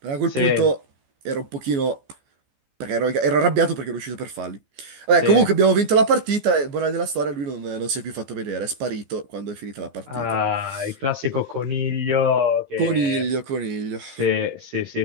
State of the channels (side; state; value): left; late; 14 ms